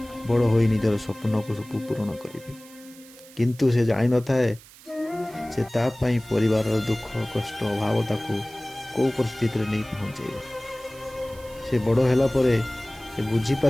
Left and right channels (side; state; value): right; noise; hiss, 22 dB below the sound